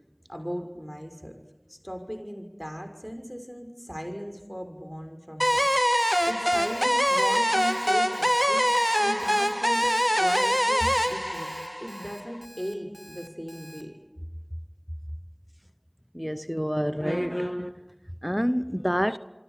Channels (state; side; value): identical; both; correlation 1.00